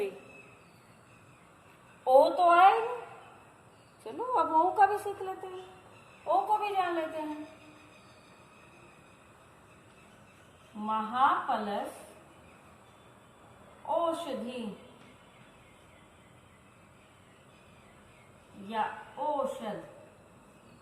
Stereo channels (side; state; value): both; identical; correlation 1.00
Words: ओ तो आए, चलो अब ओ का भी सीख लेते हैं, ओ को भी जान लेते हैं। महा प्लस औषधि या औषध,